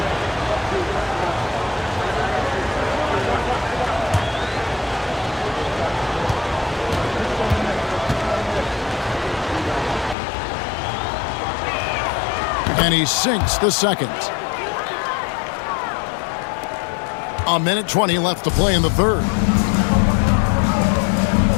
And he sinks the second. A minute 20 left to play in the third.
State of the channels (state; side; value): drops out; right; at 10.2 s